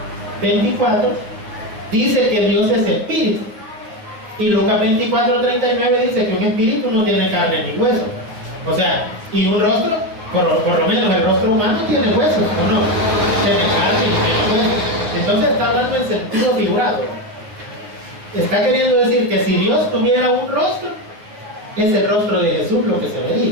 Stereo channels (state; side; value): late; left; 9.3 ms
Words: dice que Dios es espíritu, y Lucas 24:39 dice que un espíritu no tiene carne ni hueso. O sea, y un rostro, por lo menos el rostro humano tiene huesos, ¿o no? Tiene carne y tiene huesos. Entonces está hablando en sentido figurado. Está queriendo decir que si Dios tuviera un rostro, es el rostro de Jesús lo que se